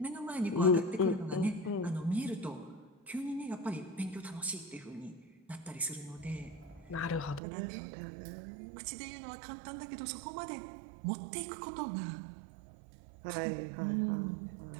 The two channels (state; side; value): drops out; left; at 7.4 s